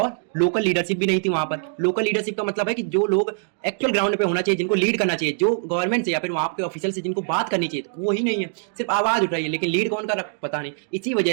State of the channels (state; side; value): silent; left; 62 dB below the other